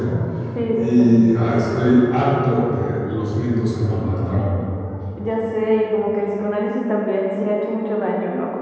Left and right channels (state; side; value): identical; both; correlation 1.00